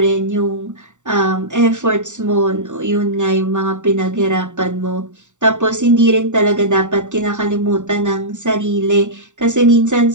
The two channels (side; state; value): left; late; 0.85 ms